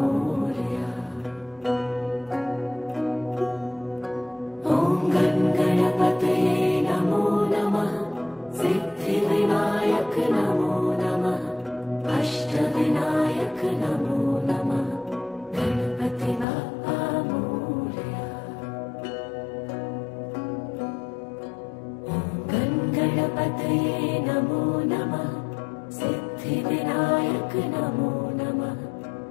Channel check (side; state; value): right; drops out; at 16.4 s